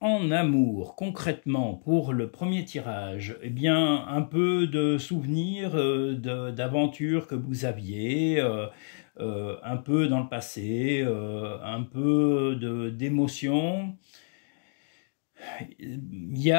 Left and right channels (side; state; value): right; silent; digital silence